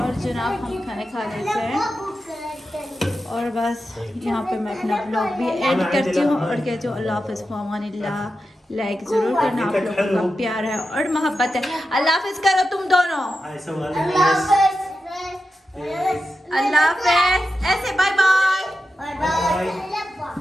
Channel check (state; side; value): normal; both; correlation 0.90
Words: जनाब हम खाने खा लेते हैं। और और बस यहाँ पे मैं अपना ब्लॉग भी एड करती हूँ और कहती हूँ अल्लाह हाफ़िज़ फ़ामानिल्लाह। लाइक ज़रूर करना, आप लोगों का प्यार है और मोहब्बत है। अल्लाह हाफ़िज़ करो तुम दोनों। अल्लाह हाफ़िज़, ऐसे बाय बाय। Bye bye.